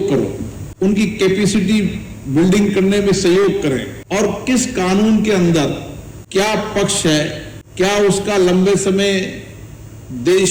करो, उनकी कैपेसिटी बिल्डिंग करने में सहयोग करें और किस कानून के अंदर क्या पक्ष है, क्या उसका लंबे समय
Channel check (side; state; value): both; identical; correlation 1.00